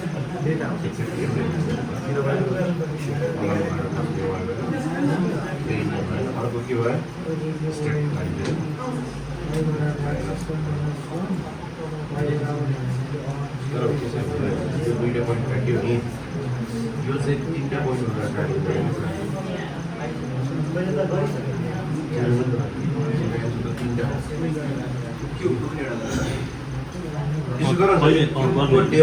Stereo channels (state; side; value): identical; both; correlation 1.00